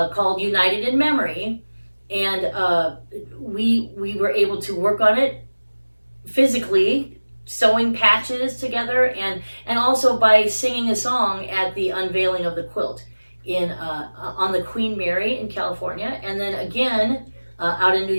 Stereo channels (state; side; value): inverted; both; correlation -1.00